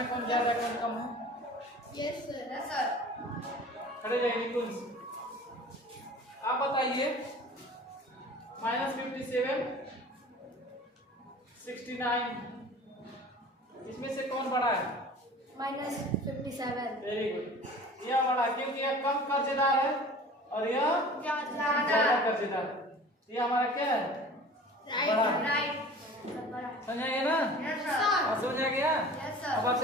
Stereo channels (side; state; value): both; normal; correlation 0.43